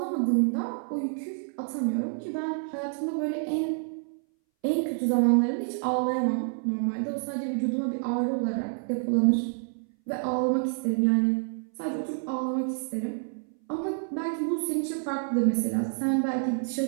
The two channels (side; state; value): left; silent; 59 dB below the other